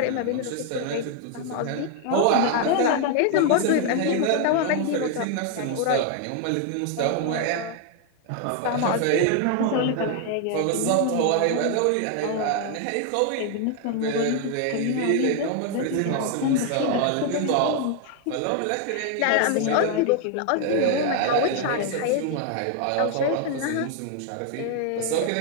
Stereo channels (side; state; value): both; different; correlation 0.00